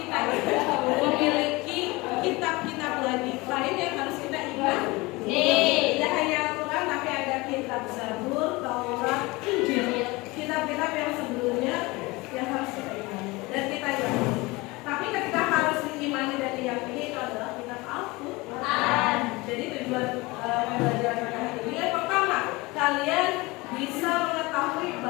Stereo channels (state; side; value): quieter; right; 23.1 dB